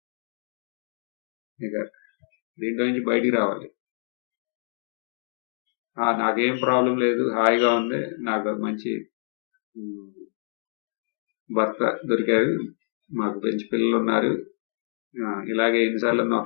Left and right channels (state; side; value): silent; right; digital silence